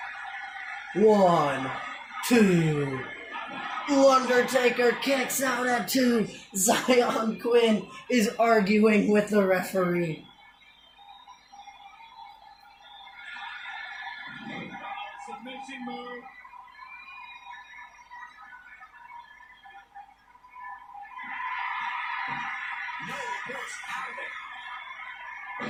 1, 2. Undertaker kicks out at 2. Zion Quinn is arguing with the referee. Submission move. No, reverse out of it.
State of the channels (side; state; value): both; identical; correlation 1.00